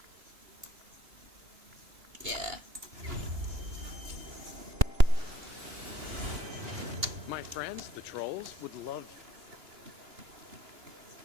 Yeah. My friends, the trolls, would love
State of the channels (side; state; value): left; late; 2.9 ms